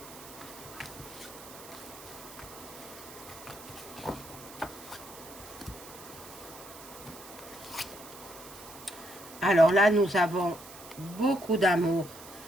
Alors là, nous avons beaucoup d'amour.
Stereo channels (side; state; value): right; noise; hiss, 16 dB below the sound